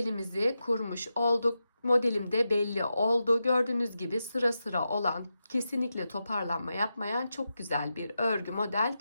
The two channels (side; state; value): both; inverted; correlation -0.89